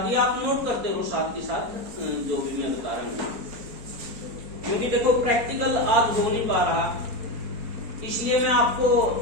ये आप नोट करते रहो साथ के साथ जो भी मैं बता रहा हूँ, क्योंकि देखो प्रैक्टिकल आज हो नहीं पा रहा, इसलिए मैं आपको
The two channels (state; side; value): late; left; 4.2 ms